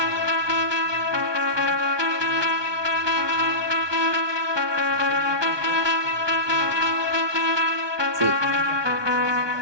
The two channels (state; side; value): late; left; 1.2 ms